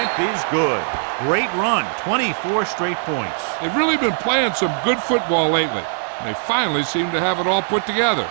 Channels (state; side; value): silent; left; digital silence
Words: is good. Great run, 24 straight points. They've really been playing some good football lately. They finally seem to have it all put together.